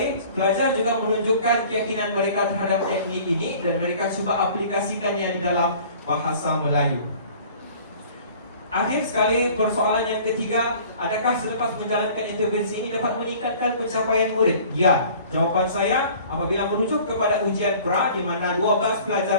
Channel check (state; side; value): inverted; both; correlation -0.49